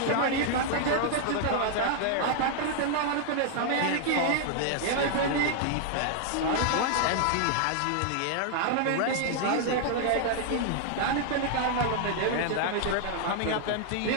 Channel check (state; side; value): different; both; correlation 0.00